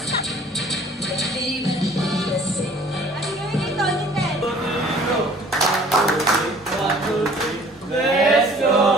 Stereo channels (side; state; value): both; normal; correlation 0.52